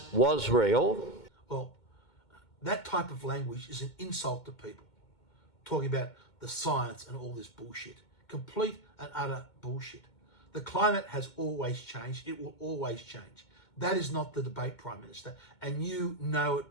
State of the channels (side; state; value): right; late; 2.2 ms